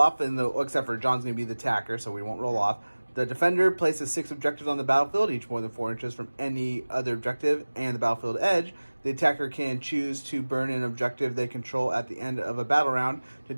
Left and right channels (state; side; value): inverted; both; correlation -1.00